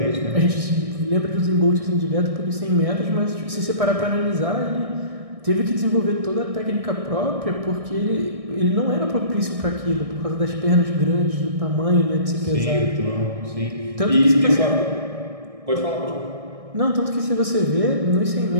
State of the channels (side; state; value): left; late; 1.6 ms